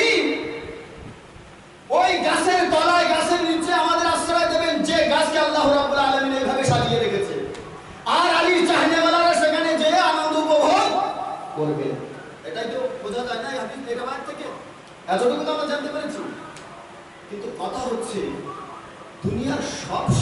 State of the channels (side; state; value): both; identical; correlation 1.00